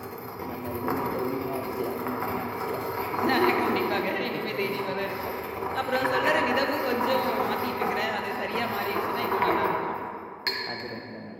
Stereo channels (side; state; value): both; identical; correlation 1.00